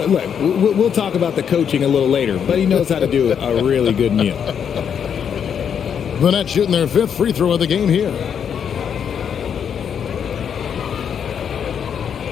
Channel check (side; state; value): right; quieter; 7.8 dB